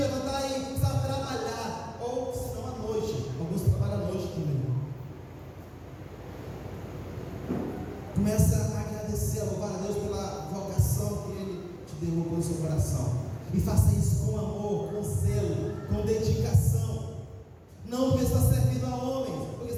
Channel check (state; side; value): identical; both; correlation 1.00